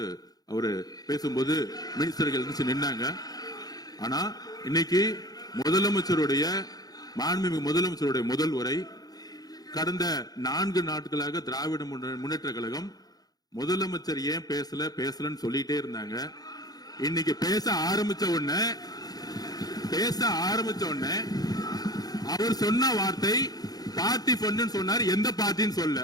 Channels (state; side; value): late; right; 0.19 ms